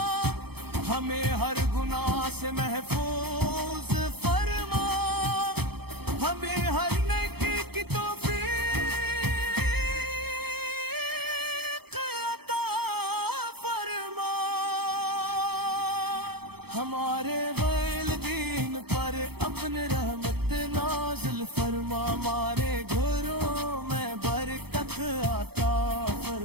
ہمیں ہر گناہ سے محفوظ فرما ہمیں ہر نیکی کی توفیق ہمارے والدین پر اپنے رحمت نازل فرما ہمارے گھروں میں برکت عطا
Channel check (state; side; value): late; left; 0.97 ms